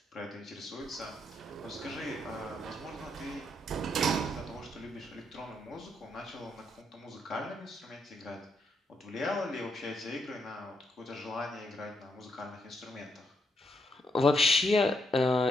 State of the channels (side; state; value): both; normal; correlation 0.78